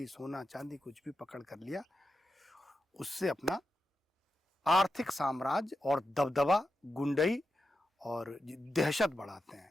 सोना चांदी कुछ भी पकड़ कर लिया, उससे अपना आर्थिक साम्राज्य और दबदबा, गुंडई और दहशत बढ़ाते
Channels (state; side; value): normal; both; correlation 0.89